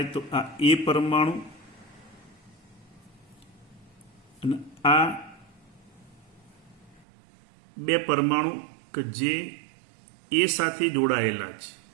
તો આ એ પરમાણુ અને આ બે પરમાણુ કે જે એ સાથે જોડાયેલા છે.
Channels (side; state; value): left; drops out; at 7.1 s